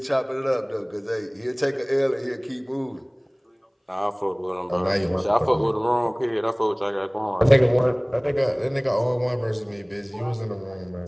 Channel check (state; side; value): identical; both; correlation 1.00